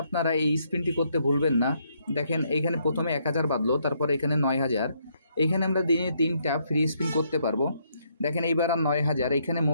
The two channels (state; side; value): inverted; both; correlation -0.73